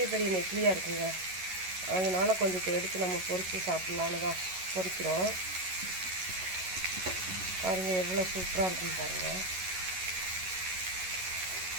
பெரிய நெத்திலியாக இருக்குங்க. அதனால் கொஞ்சம் எடுத்து நம்ம பொரித்து சாப்பிட்லான்னு தான் பொரிக்கிறோம். பாருங்கள் எவ்வளோ சூப்பராக இருக்குன்னு பாருங்கள்.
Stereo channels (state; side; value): late; left; 11 ms